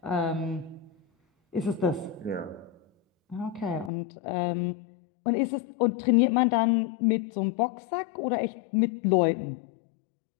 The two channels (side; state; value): right; drops out; at 3.9 s